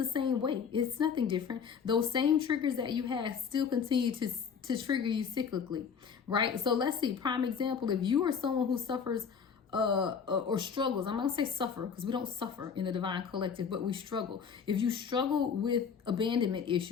same way. It's nothing different. Those same triggers that you have still continue to trigger you cyclically, right? So let's see, prime example, if you are someone who suffers or struggles. I'm not gonna say suffer because we don't suffer in the divine collective, but we struggle. If you struggle with abandonment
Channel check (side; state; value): right; quieter; 6.6 dB